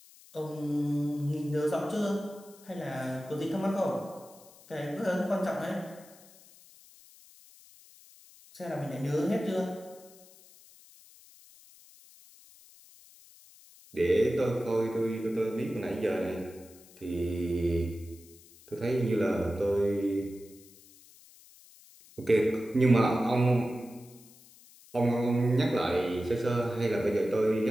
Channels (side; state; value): left; noise; hiss, 24 dB below the sound